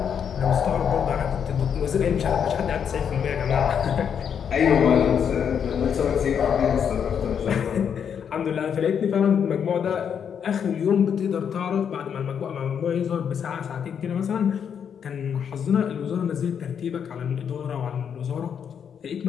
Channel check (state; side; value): quieter; right; 7.7 dB